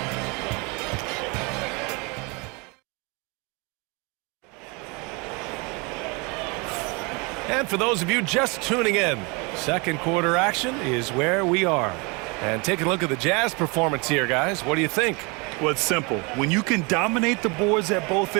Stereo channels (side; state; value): left; quieter; 29.3 dB